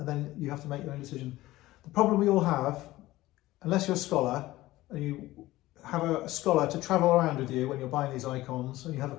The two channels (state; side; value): quieter; right; 17.2 dB